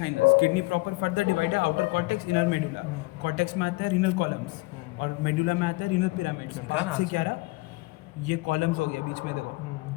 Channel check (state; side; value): quieter; right; 23.1 dB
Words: Kidney proper further divide है outer cortex inner medulla. Cortex में आता है रीनल कॉलम्स और मेडुला में आता है रीनल पिरामिड्स। से क्या रहा, ये कॉलम्स हो गया बीच में, देखो